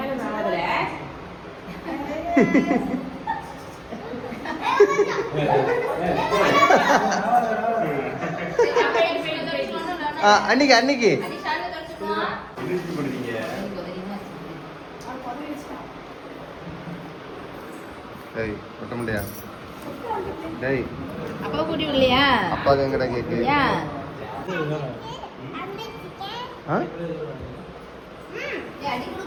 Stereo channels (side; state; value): both; identical; correlation 1.00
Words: அன்னைக்கு அன்னைக்கு டேய் ஒட்ட முடியா? டேய் அப்பா கூட்டி வரலையா? அப்பாக்கு எங்கடா கேக்கு?